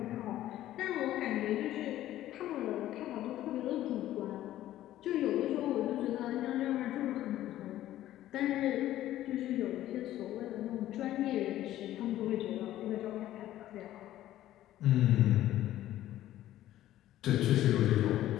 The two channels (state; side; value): quieter; right; 13.6 dB